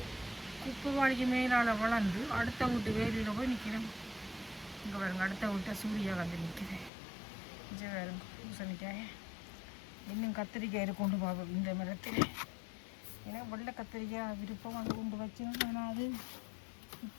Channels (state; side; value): drops out; right; at 6.9 s